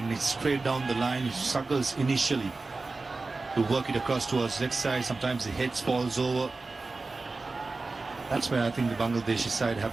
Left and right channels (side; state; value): left; quieter; 3.6 dB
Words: it's straight down the line, he struggles initially to work it across towards leg side. Sometimes the head falls over. That's where I think the Bangladeshi side have